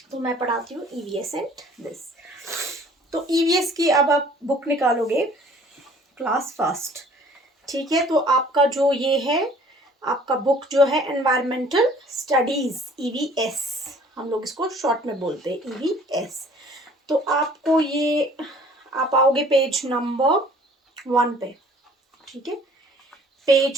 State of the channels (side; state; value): both; normal; correlation 0.54